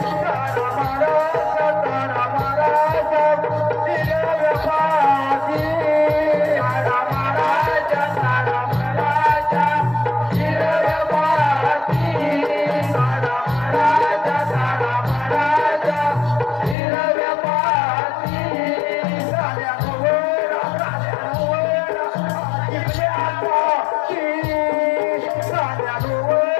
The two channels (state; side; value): drops out; right; at 16.8 s